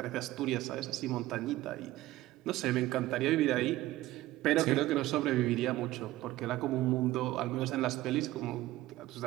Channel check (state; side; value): quieter; left; 16.5 dB